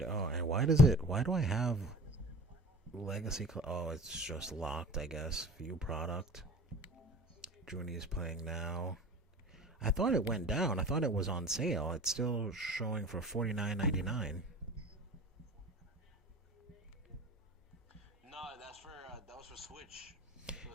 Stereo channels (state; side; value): normal; both; correlation 0.39